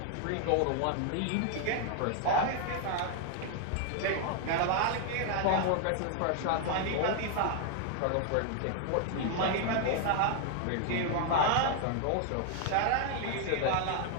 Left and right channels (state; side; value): different; both; correlation 0.00